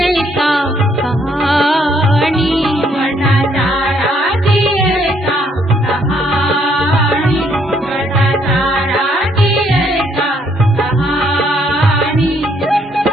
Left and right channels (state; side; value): normal; both; correlation 0.69